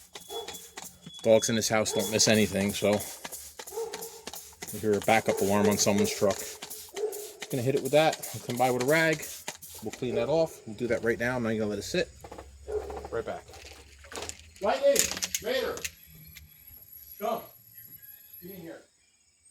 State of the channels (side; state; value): both; identical; correlation 1.00